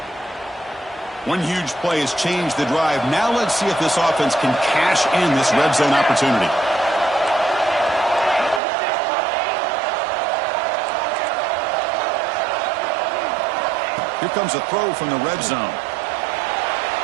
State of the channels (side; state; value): left; drops out; at 8.6 s